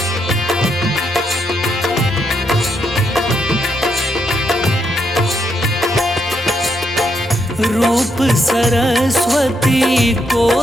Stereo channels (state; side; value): normal; both; correlation 0.78